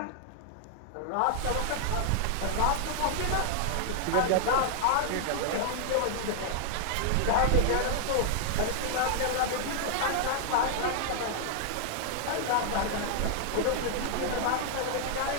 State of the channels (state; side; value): different; both; correlation -0.01